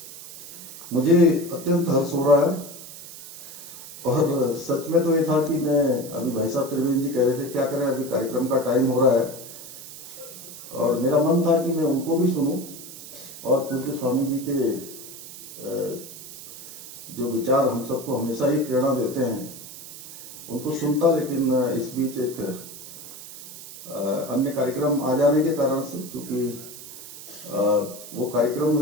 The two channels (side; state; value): right; noise; hiss, 14 dB below the sound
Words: मुझे अत्यंत हर्ष हो रहा है। और सच में तो ये था कि मैं अभी भाई साहब त्रिवेंद्र जी कह रहे थे क्या करें, अभी कार्यक्रम का टाइम हो रहा है, और मेरा मन था कि मैं उनको भी सुनूं और पूज्य स्वामी जी के जो विचार हम सबको हमेशा ही प्रेरणा देते हैं उनको सुनता, लेकिन इस बीच एक अन्य कार्यक्रम आ जाने के कारण से, क्योंकि वो कार्यक्रम